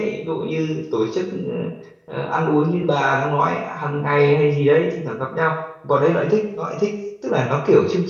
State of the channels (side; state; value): both; identical; correlation 1.00